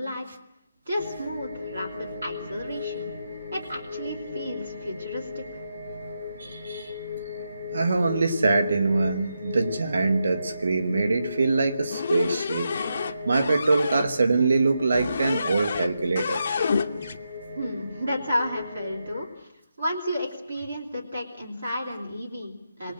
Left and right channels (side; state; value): both; inverted; correlation -0.85